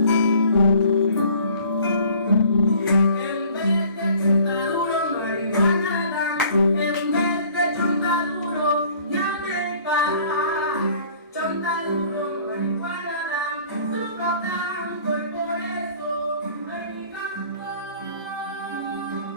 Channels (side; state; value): both; inverted; correlation -0.53